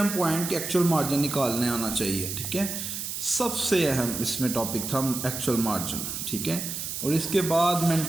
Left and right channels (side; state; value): right; noise; hiss, 5 dB below the sound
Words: पॉइंट कि एक्चुअल मार्जिन निकालने आना चाहिए, ठीक है, सबसे अहम इसमें टॉपिक था एक्चुअल मार्जिन, ठीक है। और इसके बाद